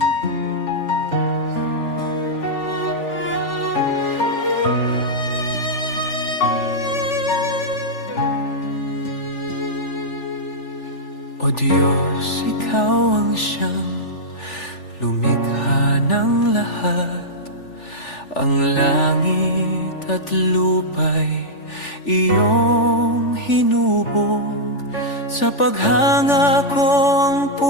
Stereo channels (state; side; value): late; right; 3.4 ms